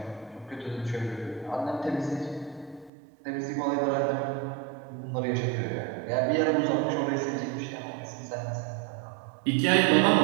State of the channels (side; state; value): left; drops out; at 2.9 s